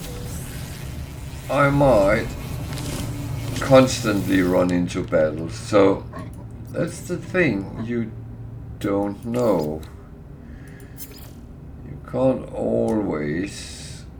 I might constantly run into battles. So that's the thing, you don't know. You can't always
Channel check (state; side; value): identical; both; correlation 1.00